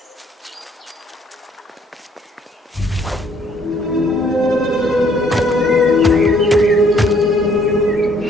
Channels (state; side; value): normal; both; correlation 0.63